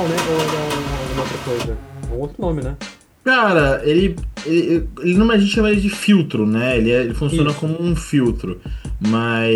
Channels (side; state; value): both; identical; correlation 1.00